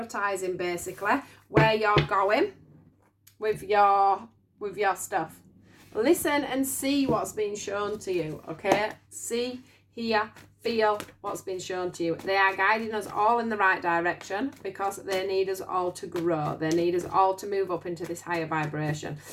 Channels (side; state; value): both; identical; correlation 1.00